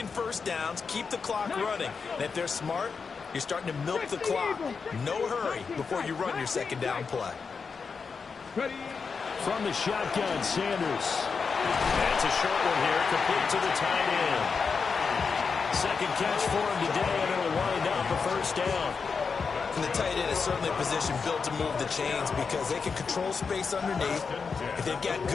first downs, keep the clock running. And if they're smart, you're starting to milk the clock. No hurry before you run your 2nd down play. From the shotgun, Sanders. That's a short one here, complete to the tight end. 2nd catch for him today, and it'll wind up a 1st down. And the tight end is certainly a position built to move the chains because they can control space underneath. If they've got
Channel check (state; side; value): quieter; right; 5.3 dB